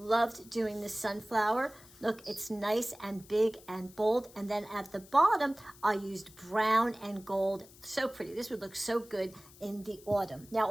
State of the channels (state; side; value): noise; left; hiss, 22 dB below the sound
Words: doing the sunflower. Look, it's nice and big and bold. And then at the bottom, I used brown and gold. So pretty. This would look so good in the autumn. Now,